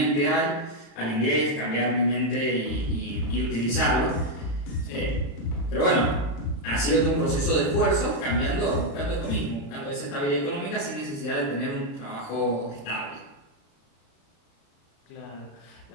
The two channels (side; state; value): right; late; 35 ms